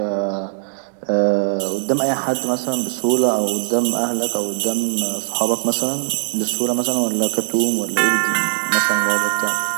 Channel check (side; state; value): left; silent; digital silence